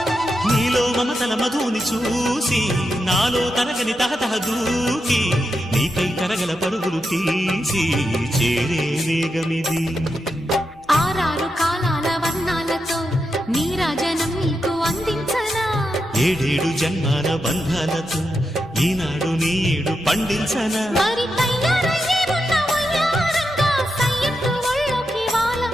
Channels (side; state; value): right; noise; hum, 25 dB below the sound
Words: నీలో మమతల మధుని చూసి నాలో తరగని తహతహ దూకి నీకై తరగల పరుగులు తీసి చేరే వేగమిది. ఆరారు కాలాల వర్ణాలతో నీరాజనం నీకు అందించనా, ఏడేడు జన్మాల బంధాలతో ఈనాడు నీ ఏడు పండించనా. మరి తయారయ్యే ఉన్న వయ్యారంగా సయ్యత్తు ఒళ్ళోకి